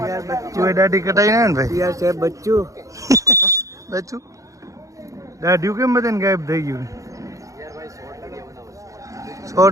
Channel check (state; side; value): late; left; 0.16 ms